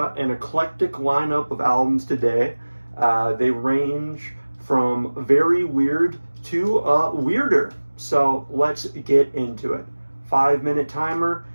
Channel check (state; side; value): inverted; both; correlation -1.00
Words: an eclectic lineup of albums today. They range from very weird to weirder. So, let's get into it. 5-minute timer.